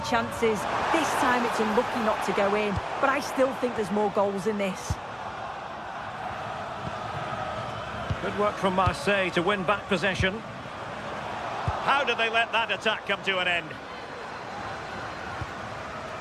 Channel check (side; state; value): both; identical; correlation 1.00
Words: chances. This time it's unlucky not to go in, but I still think there's more goals in this. Good work from Marseille to win back possession. How did they let that attack come to an end?